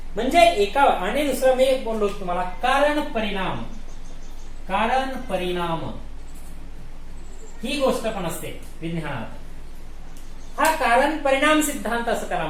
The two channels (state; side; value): identical; both; correlation 1.00